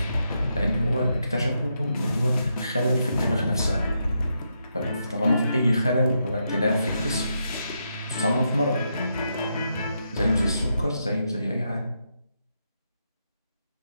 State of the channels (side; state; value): both; inverted; correlation -0.82